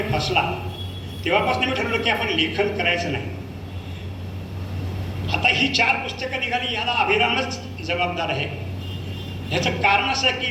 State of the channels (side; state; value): both; identical; correlation 1.00